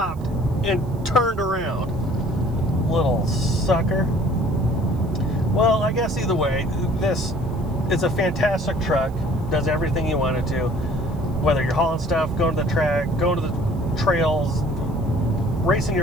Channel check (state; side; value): noise; right; hiss, 29 dB below the sound